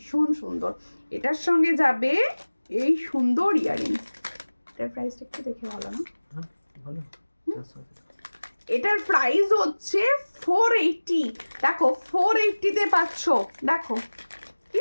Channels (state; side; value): inverted; both; correlation -1.00